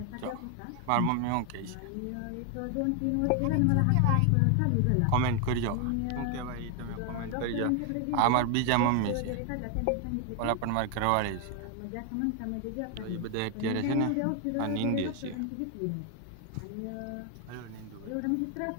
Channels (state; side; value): different; both; correlation 0.01